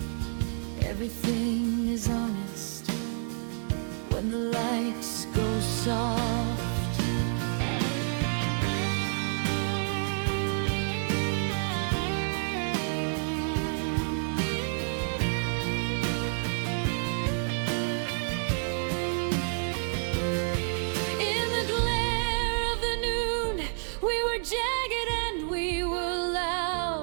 Everything is honest when the lights go soft. In the glare of the noon, we were jagged and we were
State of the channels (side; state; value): left; silent; 58 dB below the other